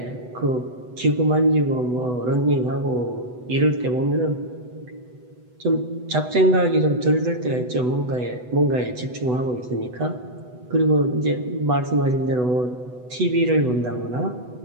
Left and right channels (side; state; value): left; late; 8.0 ms